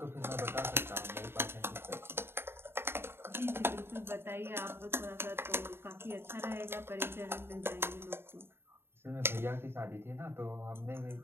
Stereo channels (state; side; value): late; left; 0.11 ms